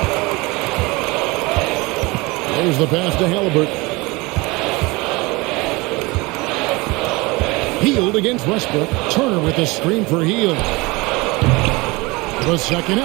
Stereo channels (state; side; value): quieter; left; 24.2 dB